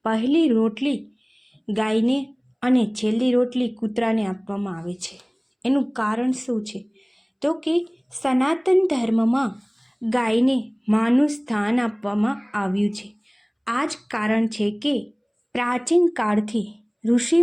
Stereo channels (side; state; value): both; identical; correlation 1.00